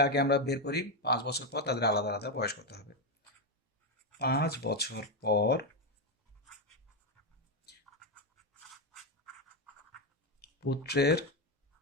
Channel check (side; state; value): both; normal; correlation 0.07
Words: আগে আমরা বের করি 5 বছর পর তাদের আলাদা আলাদা বয়স কত হবে। 5 বছর পর পুত্রের